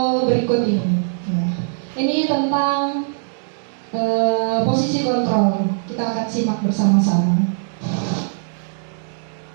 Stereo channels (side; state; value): left; silent; digital silence